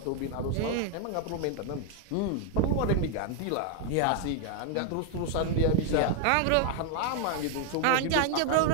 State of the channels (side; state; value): both; different; correlation 0.00